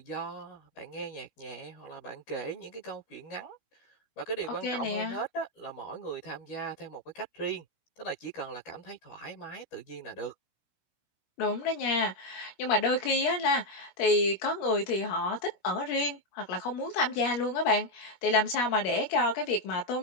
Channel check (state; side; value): late; right; 17 ms